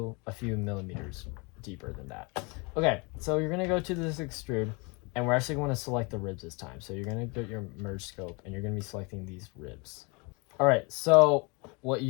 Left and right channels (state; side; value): quieter; right; 29.9 dB